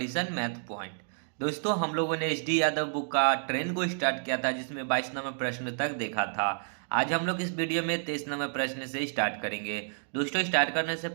math point. दोस्तों, हम लोगों ने एच डी यादव बुक का ट्रेन को स्टार्ट किया था जिसमें 22 नंबर प्रश्न तक देखा था। आज हम लोग इस वीडियो में 23 नंबर प्रश्न से स्टार्ट करेंगे। दोस्तों, स्टार्ट करने से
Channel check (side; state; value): left; silent; digital silence